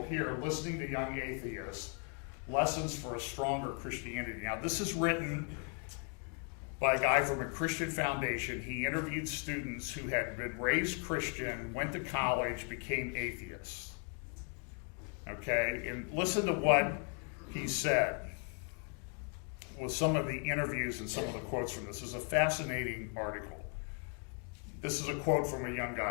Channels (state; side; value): quieter; right; 39.1 dB